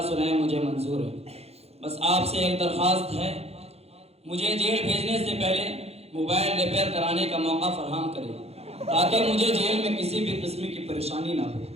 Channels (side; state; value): left; late; 0.30 ms